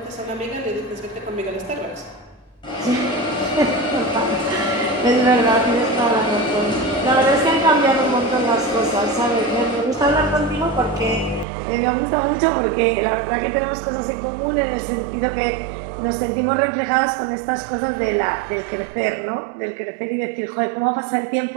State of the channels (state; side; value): drops out; left; at 11.5 s